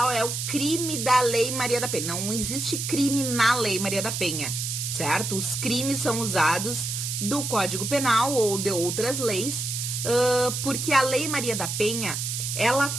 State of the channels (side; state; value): right; noise; hiss, 3 dB below the sound